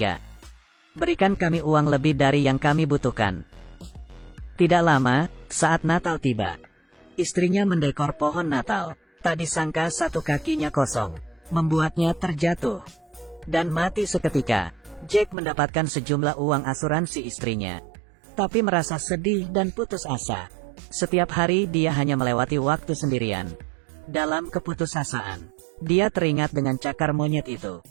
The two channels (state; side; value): drops out; left; at 15.4 s